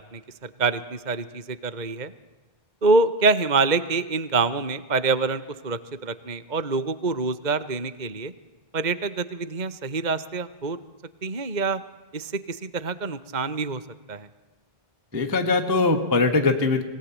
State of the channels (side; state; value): left; late; 2.0 ms